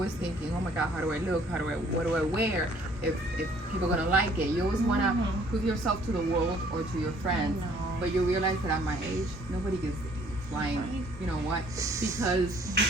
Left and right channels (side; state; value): both; normal; correlation 0.59